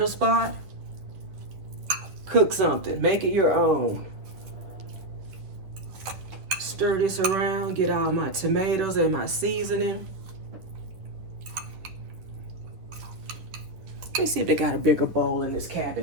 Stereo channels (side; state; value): left; late; 10 ms